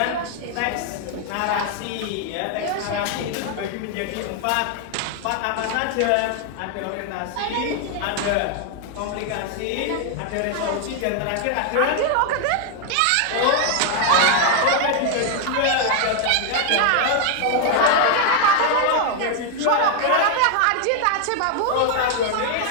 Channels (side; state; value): both; different; correlation 0.00